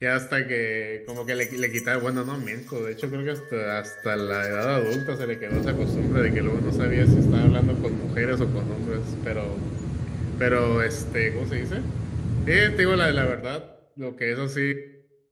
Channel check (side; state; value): both; identical; correlation 1.00